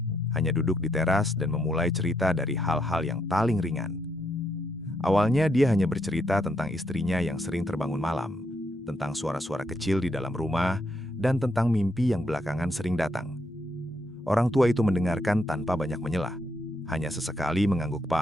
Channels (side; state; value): both; normal; correlation 0.77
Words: hanya duduk di teras dan memulai cerita dari hal-hal yang paling ringan. Awalnya dia hanya bercerita tentang istrinya yang sering terbangun malam, tentang suara-suara kecil di dalam rumah, dan tentang mimpi yang belakangan sering datang. Orang tua itu mendengarkan tanpa banyak menyelah, hanya sesekali